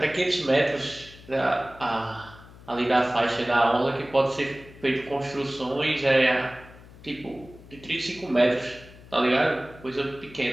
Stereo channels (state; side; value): noise; left; hum, 20 dB below the sound